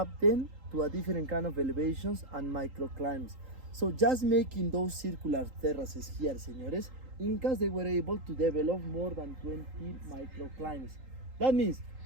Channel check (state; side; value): late; left; 3.8 ms